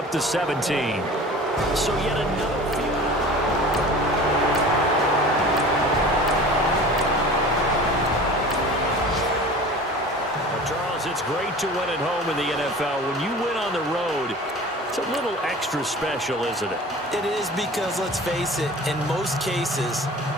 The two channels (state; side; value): normal; both; correlation 0.40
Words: to 17. So yet another field. Well, Charles, it's great to win at home in the NFL. When you win on the road, it's a little extra special, isn't it? It is because, let's face it, in most cases,